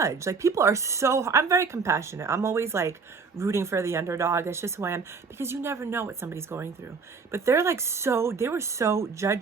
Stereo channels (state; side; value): quieter; left; 5.0 dB